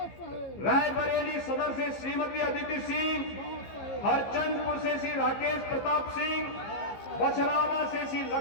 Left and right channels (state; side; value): late; right; 15 ms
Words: रायबरेली सदर से श्रीमती अदिति सिंह, हरचंदपुर से श्री राकेश प्रताप सिंह, बछरावा से श्री